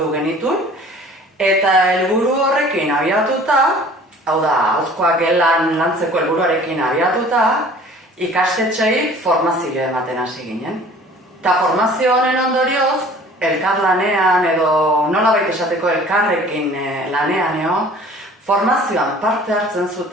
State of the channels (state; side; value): normal; both; correlation 0.49